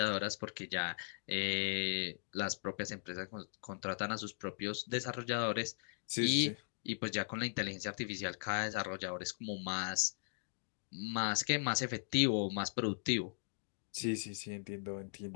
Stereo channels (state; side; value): silent; right; digital silence